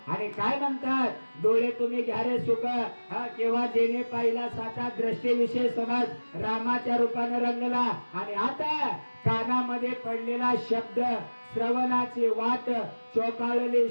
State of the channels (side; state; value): both; inverted; correlation -1.00